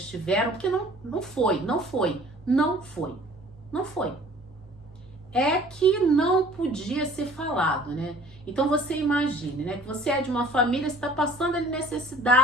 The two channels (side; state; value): both; normal; correlation 0.51